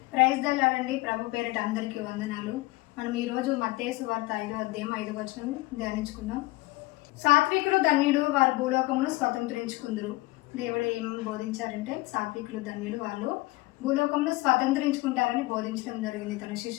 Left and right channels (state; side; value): quieter; right; 20.7 dB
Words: Praise the lord అండి. ప్రభు పేరిట అందరికీ వందనాలు. మనం ఈరోజు మత్తయి సువార్త 5వ అధ్యాయం 5వ వచనం ధ్యానించుకుందాం. సాత్వికులు ధన్యులు, వారు భూలోకమును స్వతంత్రించుకుందరు. దేవుడు ఏం బోధించారంటే సాత్వికులు ధన్యులు, వాళ్ళు భూలోకంలో స్వతంత్రించుకుంటారని బోధించడం జరిగింది తన